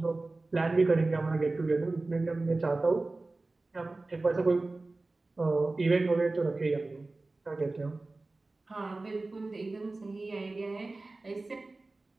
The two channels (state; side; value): quieter; left; 3.3 dB